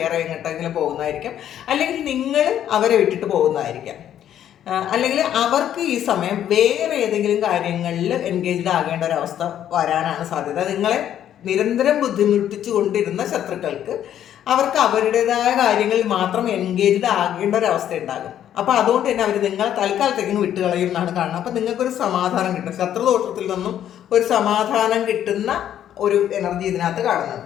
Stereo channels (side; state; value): right; quieter; 10.6 dB